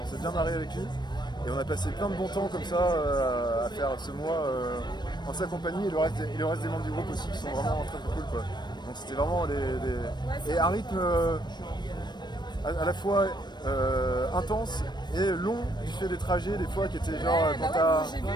s'est bien marré avec lui. Et on a passé plein de bons temps comme ça à faire ce mois en sa compagnie et le reste des membres du groupe aussi qui sont vraiment très cool quoi. Donc c'était vraiment et un rythme à la fois intense et long du fait des trajets des fois qui étaient genre j'ai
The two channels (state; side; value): late; right; 0.21 ms